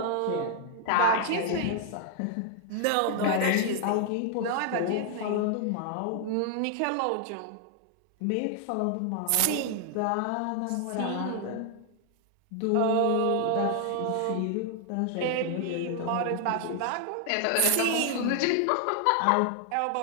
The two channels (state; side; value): different; both; correlation 0.00